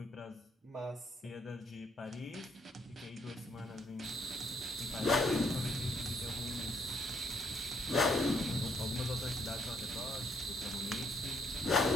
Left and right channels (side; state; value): both; normal; correlation 0.69